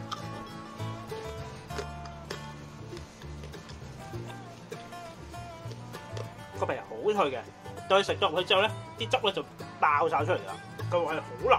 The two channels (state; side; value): identical; both; correlation 1.00